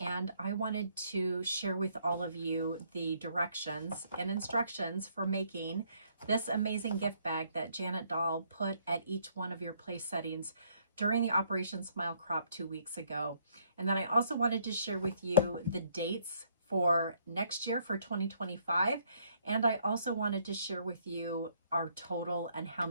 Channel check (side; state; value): both; inverted; correlation -0.68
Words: I wanted to share with all of you the directions and instructions for making this amazing gift bag that Janet Dahl put at each one of your place settings during the Operation Smile Crop 2 weeks ago. And then I also wanted to share with you the dates for next year, for 2025. And I also wanted to share with you our total and how